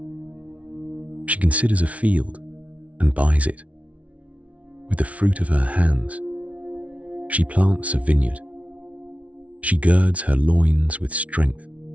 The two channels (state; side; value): late; left; 0.066 ms